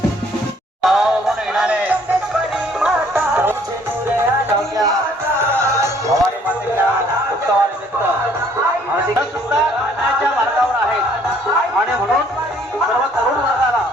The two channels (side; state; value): both; normal; correlation 0.61